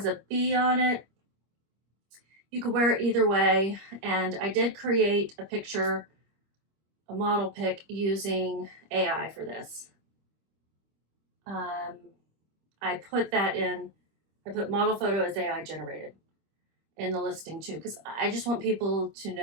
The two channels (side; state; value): left; late; 25 ms